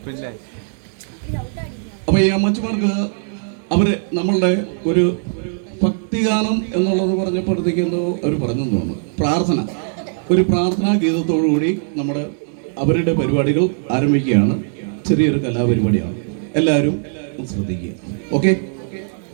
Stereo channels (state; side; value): silent; left; digital silence